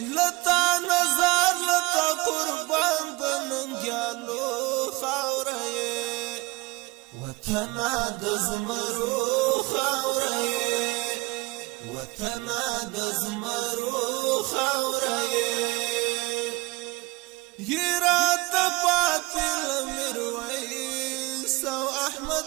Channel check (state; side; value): quieter; left; 24.0 dB